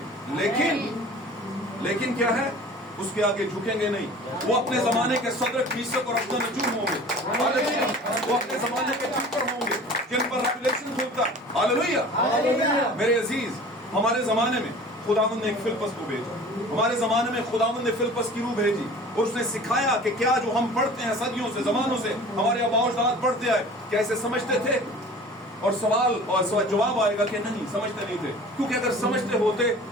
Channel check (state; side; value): normal; both; correlation 0.43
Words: لیکن کیا ہے؟ اس کے آگے جھکیں گے نہیں. وہ اپنے زمانے کے صدر فیصد اور اپنے نجوم ہوں گے، وہ اپنے زمانے کے چکر ہوں گے جن پر ریویلیشن کھلتا. ہاللویا. میرے عزیز، ہمارے زمانے میں خداوند نے ایک فلپس کو بھیجا. ہمارے زمانے میں خداوند نے فلپس کی روح بھیجی اور اس نے سکھایا کہ کیا جو ہم پڑھتے ہیں صدیوں سے، زمانوں سے ہمارے آباء و اجداد پڑھتے آئے، کیا اسے سمجھتے تھے؟ اور سوال اور جواب آئے گا کہ نہیں، سمجھتے نہیں تھے، کیونکہ اگر سمجھتے ہوتے